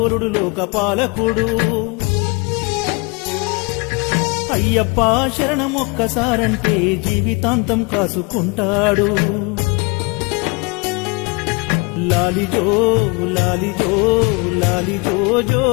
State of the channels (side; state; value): right; quieter; 29.4 dB